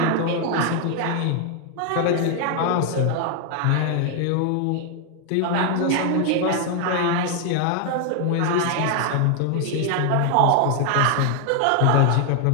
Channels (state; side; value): different; both; correlation 0.00